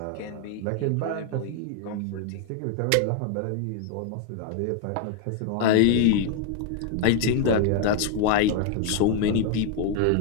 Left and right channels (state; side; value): different; both; correlation 0.00